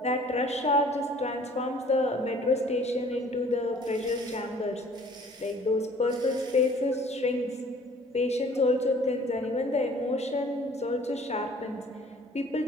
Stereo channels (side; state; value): both; normal; correlation 0.53